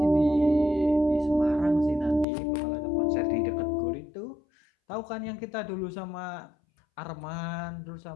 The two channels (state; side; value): drops out; right; at 2.2 s